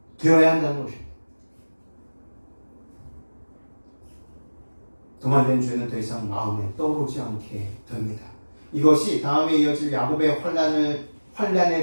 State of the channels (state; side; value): inverted; both; correlation -1.00